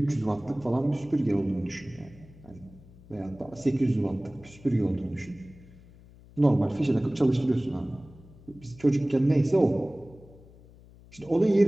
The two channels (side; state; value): left; noise; hum, 23 dB below the sound